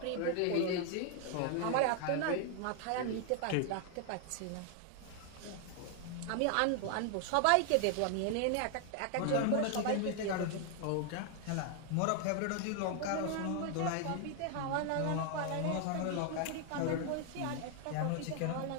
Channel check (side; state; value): both; different; correlation 0.00